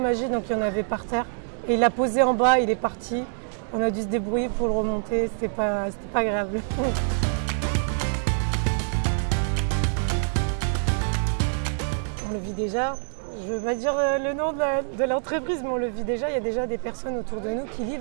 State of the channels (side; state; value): left; silent; digital silence